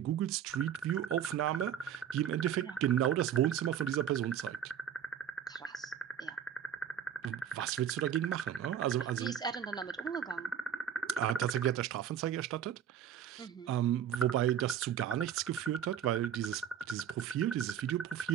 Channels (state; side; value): quieter; left; 9.0 dB